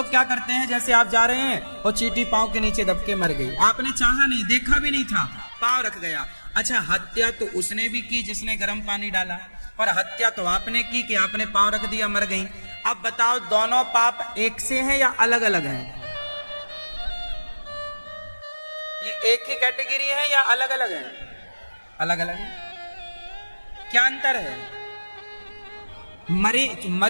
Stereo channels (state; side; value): inverted; both; correlation -1.00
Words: क्या करते हैं, जैसे आप जा रहे हैं और चींटी पांव के नीचे दब के मर गई, आपने चाहा नहीं, देखा भी नहीं था, पांव रख गया। अच्छा, हत्या तो उसने भी की जिसने गर्म पानी डाला, और हत्या तो आपने की कि आपने पांव रख दिया, मर गई। अब बताओ, दोनों पाप एक से हैं या अलग अलग हैं? ये एक ही कैटेगरी है या अलग अलग है? अलग अलग है। क्या अंतर है?